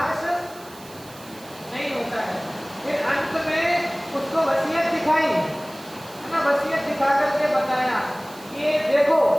नहीं होता है। फिर अंत में उसको वसीयत दिखाई, है ना, वसीयत दिखा करके बताया कि ये देखो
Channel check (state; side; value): noise; right; hiss, 20 dB below the sound